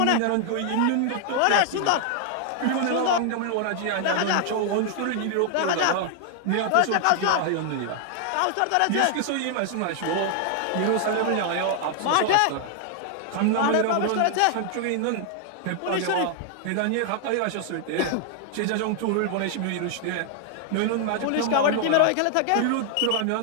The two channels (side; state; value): both; different; correlation 0.00